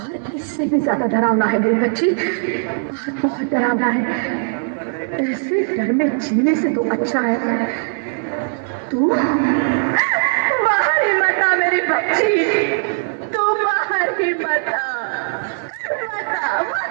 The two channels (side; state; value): left; silent; digital silence